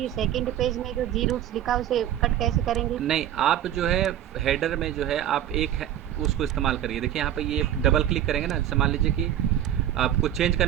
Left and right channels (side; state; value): left; quieter; 11.3 dB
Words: सेकंड पेज में जो जी रूट्स लिखा है उसे कट कैसे करेंगे? नहीं, आप जो है हेडर में जो है आप उसको इस्तेमाल करिए। देखिए यहाँ पे ये डबल क्लिक करेंगे ना, जैसे मान लीजिए कि आपको चेंज